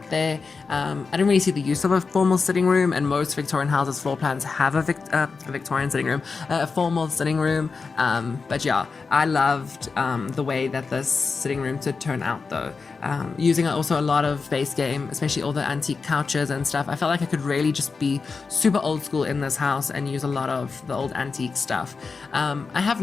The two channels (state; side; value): quieter; right; 4.7 dB